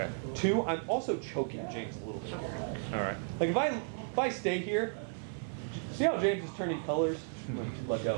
Two, I'm also choking James a little bit here. All right. Like if I stay here, see how James is turning colors? Let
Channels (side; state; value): left; silent; digital silence